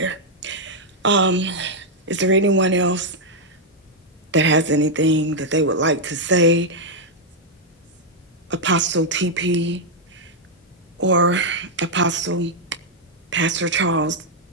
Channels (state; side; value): normal; both; correlation -0.02